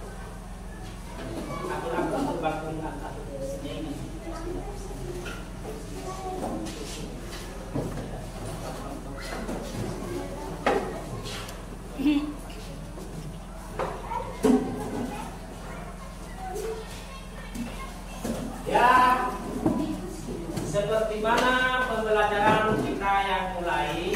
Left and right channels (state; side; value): identical; both; correlation 1.00